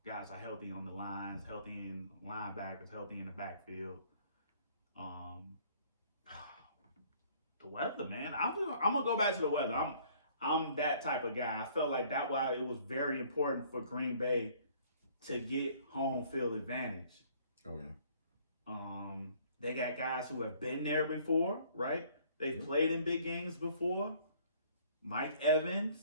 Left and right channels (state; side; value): inverted; both; correlation -0.58